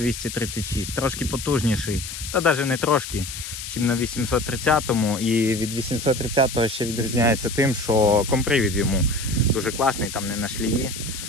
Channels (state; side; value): noise; left; hiss, 8 dB below the sound